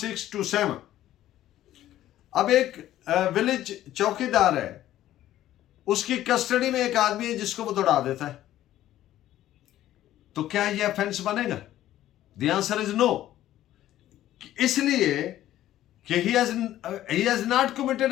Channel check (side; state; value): right; quieter; 13.4 dB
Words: अब एक विलेज चौकीदार है, उसकी कस्टडी में एक आदमी है जिसको वो दौड़ा देता है, तो क्या ये ऑफेंस बनेगा? द आंसर इज नो, इसलिए कि he has not